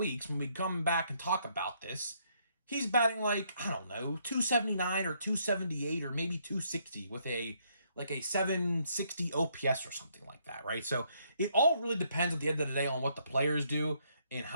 when we come back and talk about this, he's batting like, I don't know, 279 or 278 or maybe 260 with a 760 OPS or something like that, right? So it all really depends at the end of the day on what the players do and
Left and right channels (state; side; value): inverted; both; correlation -0.71